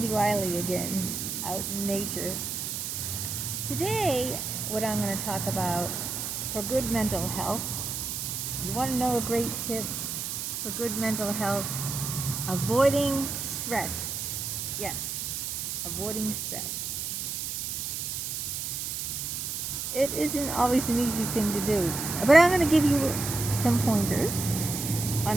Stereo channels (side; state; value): right; noise; hiss, 3 dB below the sound